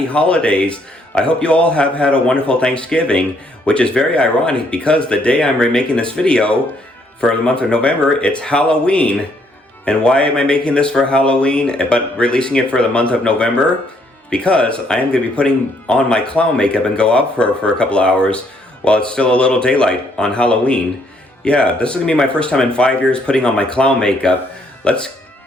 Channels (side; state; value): both; normal; correlation 0.69